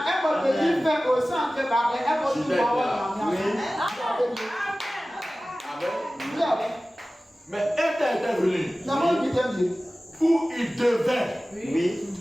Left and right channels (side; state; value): both; normal; correlation 0.97